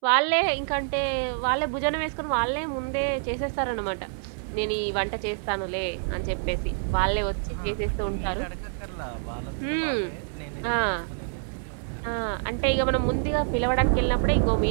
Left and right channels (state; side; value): silent; left; 60 dB below the other